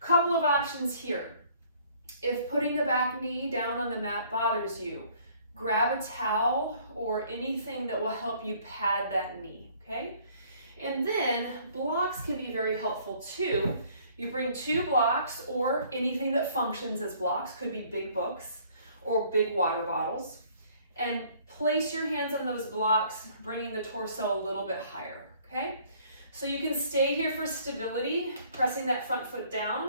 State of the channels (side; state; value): both; inverted; correlation -0.58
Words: of options here. If putting the back knee down on the mat bothers you, grab a towel or anything that will help you pad that knee, okay? And then blocks can be very helpful too. You bring 2 blocks or anything that functions as blocks, could be big books or big water bottles, and place your hands on those blocks, bringing the torso a little bit higher, okay? So you can stay here for stability, pressing that front foot